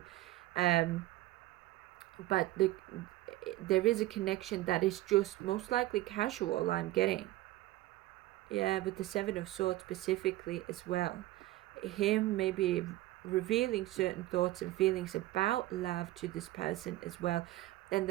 But there is a connection that is just most likely casual, I'm getting. Yeah, with the Seven of Swords specifically as well. Him maybe revealing certain thoughts and feelings about love to this person as well. And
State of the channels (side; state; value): left; quieter; 16.8 dB